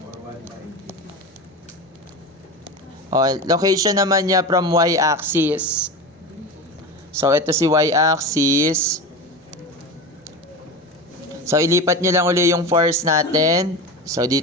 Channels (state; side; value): normal; both; correlation 0.26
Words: Location naman niya from Y-axis. So, ito si Y-axis. So, ilipat nyo lang uli yung force natin. So,